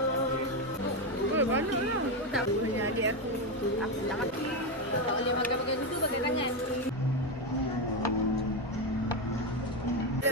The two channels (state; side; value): normal; both; correlation 0.09